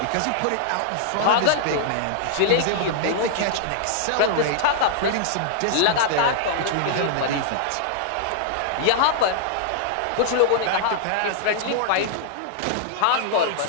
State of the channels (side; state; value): both; different; correlation -0.01